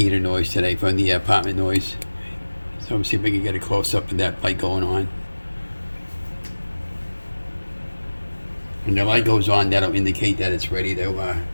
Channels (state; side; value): inverted; both; correlation -1.00